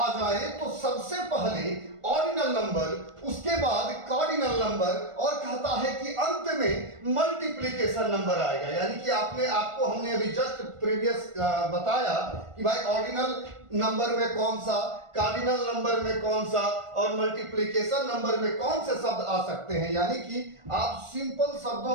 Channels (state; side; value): late; left; 1.4 ms